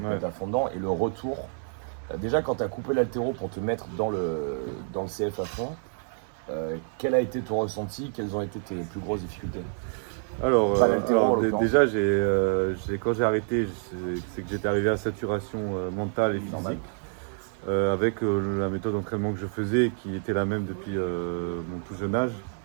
te Ouais. mettre à fond dedans. Et le retour, déjà quand tu as coupé l'haltéro pour te mettre dans le CF à fond, quel a été ton ressenti? Quelles ont été tes plus grosses difficultés? Alors, Pas l'haltéro, en l'occurrence. déjà, quand j'ai arrêté, c'est que j'étais arrivé à saturation mentale et Normal. physique. Avec la méthode d'entraînement que je faisais, qui était la même depuis mon tout jeune âge.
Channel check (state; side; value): silent; left; 59 dB below the other